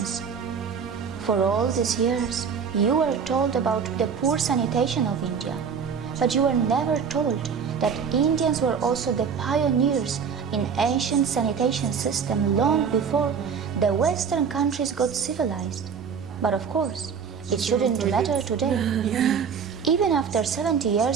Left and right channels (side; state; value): left; quieter; 6.5 dB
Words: For all these years, you were told about the poor sanitation of India, but you were never told that Indians were also the pioneers in ancient sanitation system long before the Western countries got civilized. But of course, it shouldn't matter today. Even after 70